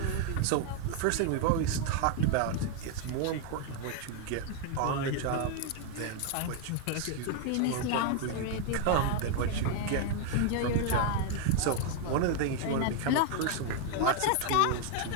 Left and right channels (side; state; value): both; different; correlation 0.00